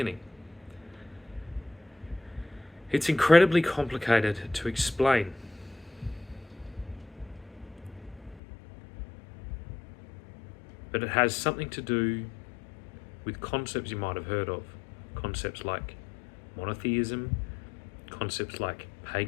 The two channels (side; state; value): right; drops out; at 8.4 s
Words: It's incredibly complicated to explain. But it has something to do with concepts you might have heard of. Concepts like monotheism, concepts like